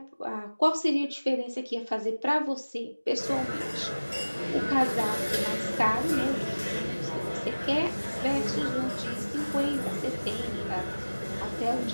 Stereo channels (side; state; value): both; inverted; correlation -1.00